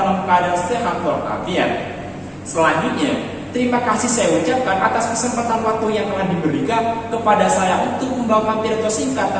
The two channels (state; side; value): identical; both; correlation 1.00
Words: keadaan sehat walafiat. Selanjutnya, terima kasih saya ucapkan atas kesempatan waktu yang telah diberikan kepada saya untuk membawakan pidato singkat